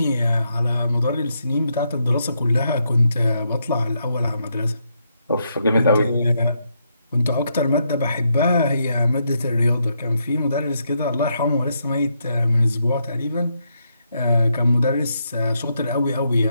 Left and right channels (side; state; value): both; inverted; correlation -0.79